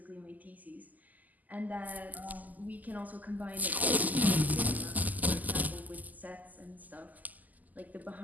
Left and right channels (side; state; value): left; late; 0.081 ms